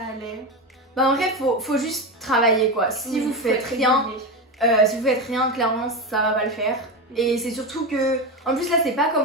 Bah en vrai faut juste travailler quoi. Si vous faites rien, clairement ça va pas le faire. Et c'est surtout que, en plus là c'est pas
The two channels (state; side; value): normal; both; correlation 0.18